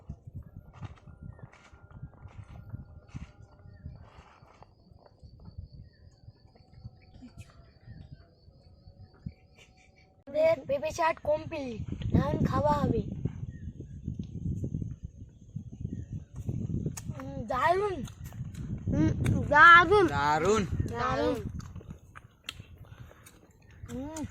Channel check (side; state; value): both; identical; correlation 1.00